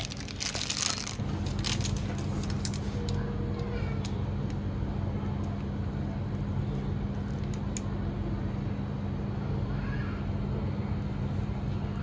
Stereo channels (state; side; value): identical; both; correlation 1.00